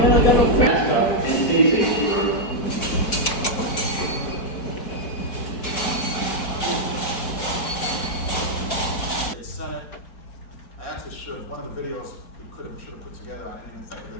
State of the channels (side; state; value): right; late; 4.9 ms